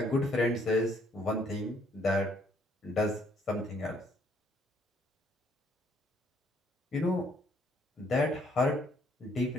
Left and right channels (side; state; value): both; normal; correlation 0.66